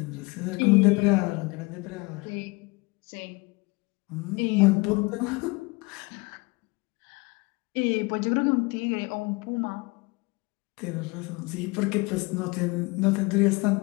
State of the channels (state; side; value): quieter; right; 25.9 dB